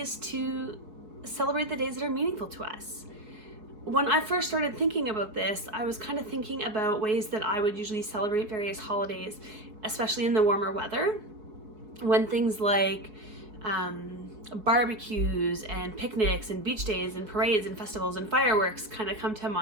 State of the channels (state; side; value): late; left; 4.6 ms